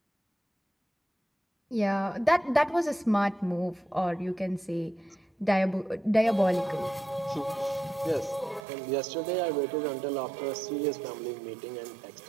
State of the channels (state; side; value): drops out; left; at 8.7 s